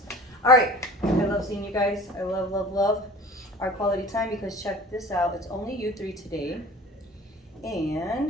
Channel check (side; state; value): both; normal; correlation 0.42